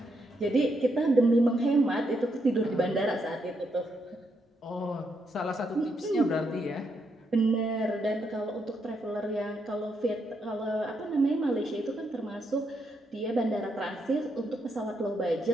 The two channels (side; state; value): both; normal; correlation 0.79